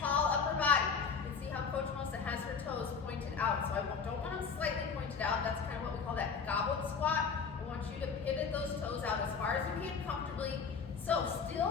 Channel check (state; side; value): quieter; right; 5.7 dB